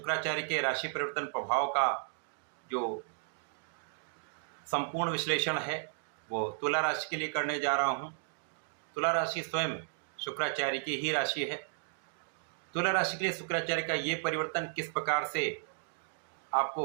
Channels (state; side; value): silent; left; digital silence